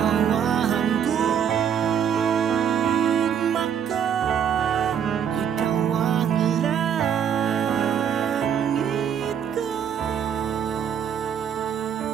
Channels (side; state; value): left; quieter; 8.3 dB